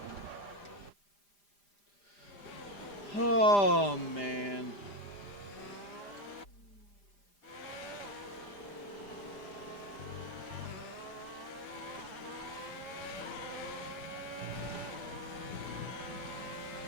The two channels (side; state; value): right; late; 5.0 ms